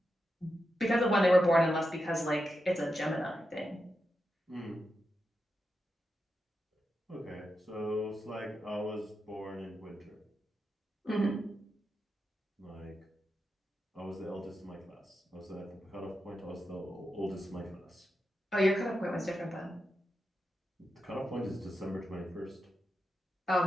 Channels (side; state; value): both; normal; correlation 0.88